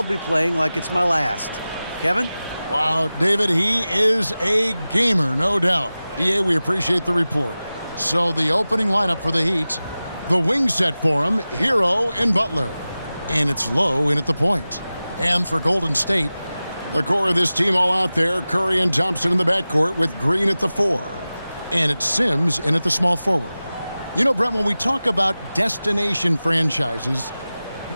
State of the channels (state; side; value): inverted; both; correlation -0.96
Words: be playing like it's my last. Kevin? Wow, David, he is a gamer, no doubt. DA, we appreciate the report. So the opening lineup for the Heat, the wing set for him, Hero and Butler. And it's Low in at the point. And for Golden State, the core of this team all out there, Curry and Thompson in the backcourt with Green at the 4. And it's Sims in at the small forward. You know, Brent, when we talk about destination franchises,